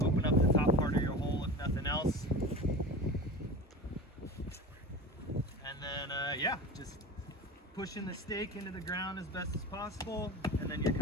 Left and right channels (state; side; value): normal; both; correlation 0.32